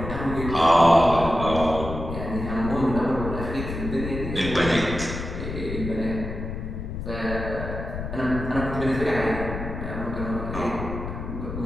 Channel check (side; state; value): left; noise; rumble, 6 dB below the sound